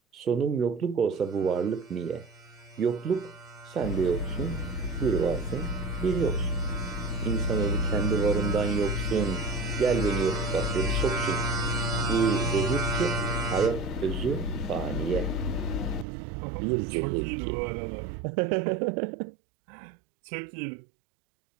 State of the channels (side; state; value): left; drops out; at 16.1 s